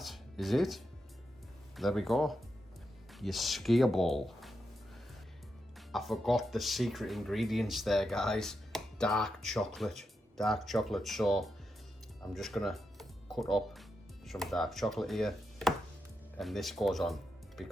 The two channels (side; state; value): both; normal; correlation 0.86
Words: is it. There we go. Your skier ball. I forgot the secret ingredients there, guys. Dark chocolate. Dark chocolate. So I'm just gonna cut up some dark chocolate here, and this goes on